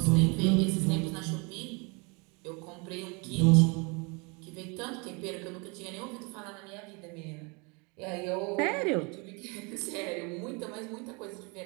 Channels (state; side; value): quieter; left; 30.9 dB